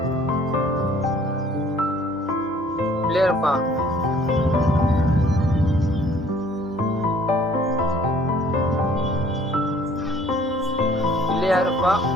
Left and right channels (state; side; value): normal; both; correlation 0.56